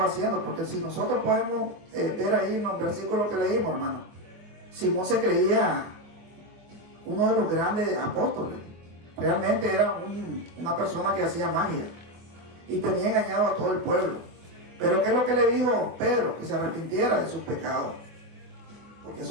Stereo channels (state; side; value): late; left; 24 ms